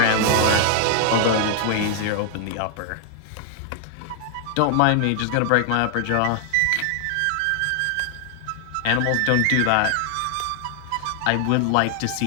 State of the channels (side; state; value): both; different; correlation 0.00